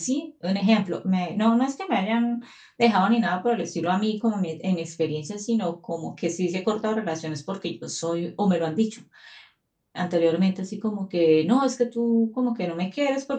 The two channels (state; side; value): identical; both; correlation 1.00